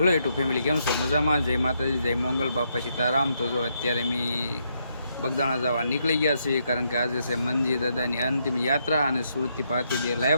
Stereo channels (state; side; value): inverted; both; correlation -0.77